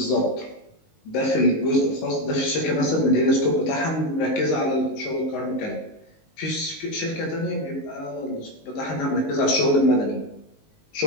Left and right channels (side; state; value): right; late; 19 ms